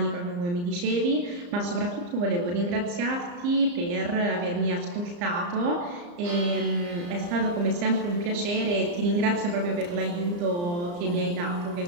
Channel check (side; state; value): left; late; 34 ms